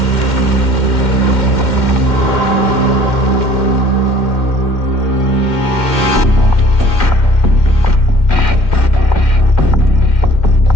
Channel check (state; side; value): late; right; 2.1 ms